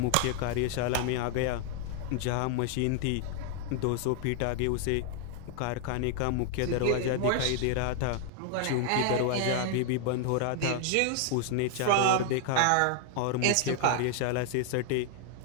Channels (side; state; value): both; different; correlation 0.00